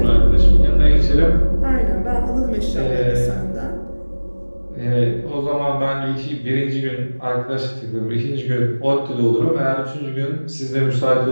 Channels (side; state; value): both; inverted; correlation -1.00